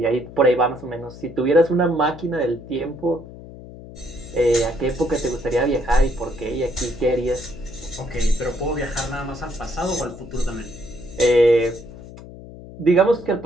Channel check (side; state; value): left; noise; hum, 16 dB below the sound